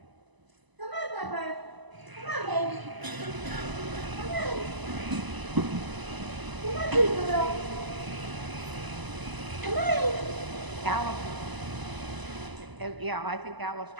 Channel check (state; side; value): late; left; 1.0 ms